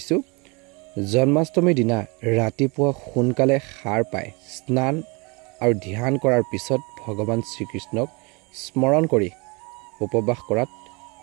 জন্মাষ্টমীৰ দিনা ৰাতিপুৱা সোনকালে সাৰ পাই স্নান আৰু ধ্যান কৰাৰ পিছত ভগৱান শ্ৰীকৃষ্ণক স্মৰণ কৰি উপবাস কৰাত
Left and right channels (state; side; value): quieter; left; 29.1 dB